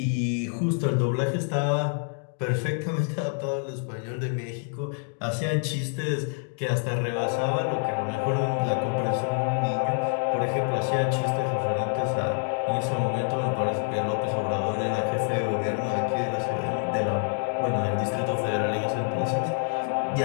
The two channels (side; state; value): right; silent; 55 dB below the other